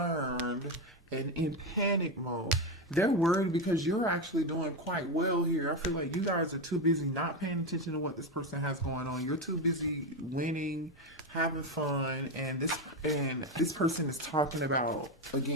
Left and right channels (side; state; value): both; normal; correlation 0.12